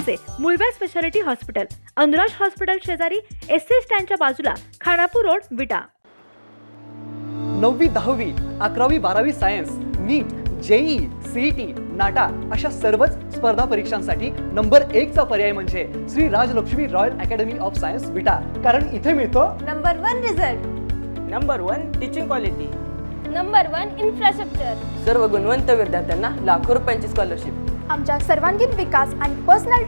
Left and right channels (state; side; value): inverted; both; correlation -1.00